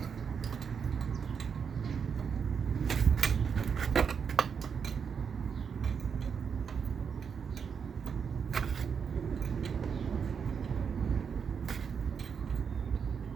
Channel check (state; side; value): quieter; left; 6.6 dB